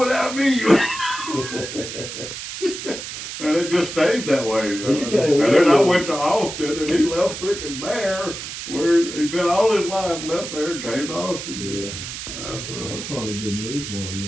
me. And it just stayed that way. You can't And live then I with- went to Austin, and he left freaking there, where he'd been all his life, left there, and came to Austin. Yeah, That's, that's probably a good move for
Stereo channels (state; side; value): noise; right; hiss, 8 dB below the sound